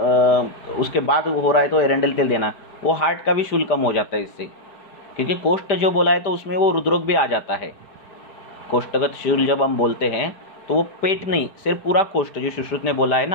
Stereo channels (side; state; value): right; late; 5.0 ms